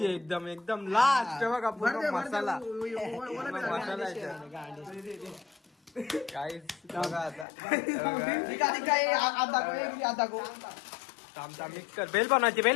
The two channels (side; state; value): right; drops out; at 7.5 s